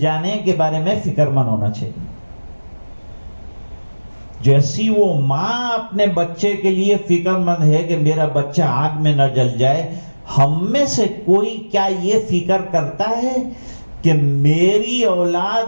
کے بارے میں فکر مند ہونا چاہیے. جیسی وہ ماں اپنے بچے کے لیے فکر مند ہے کہ میرا بچہ آگ میں نہ جل جائے، ہم میں سے کوئی کیا یہ فکر کرتا ہے کہ میری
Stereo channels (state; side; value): inverted; both; correlation -1.00